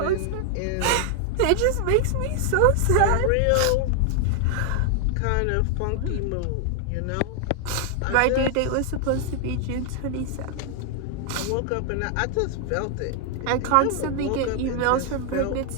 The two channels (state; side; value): different; both; correlation 0.00